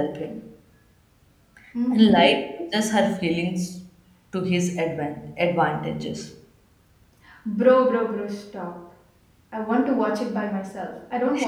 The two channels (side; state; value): both; identical; correlation 1.00